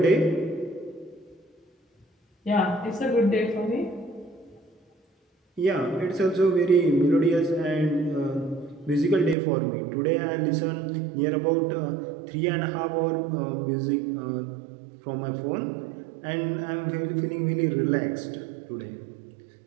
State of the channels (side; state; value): left; drops out; at 9.3 s